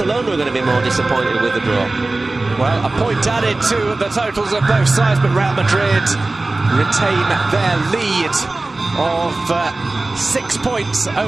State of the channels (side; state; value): left; quieter; 3.1 dB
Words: are going to be more disappointed with the draw. Well, a point added to the totals of both sides, but Real Madrid retain their lead of 6 points